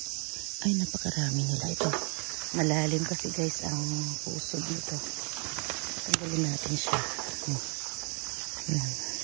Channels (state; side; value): quieter; left; 36.4 dB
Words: Ay, napakarami nila ito. Malalim kasi guys ang puso dito. Tanggalin natin siya. Ayan.